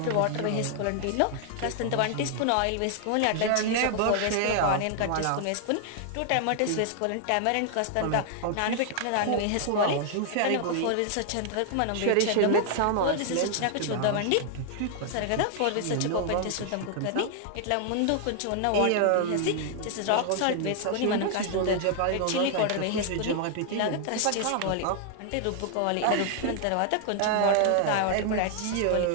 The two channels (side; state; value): both; different; correlation 0.00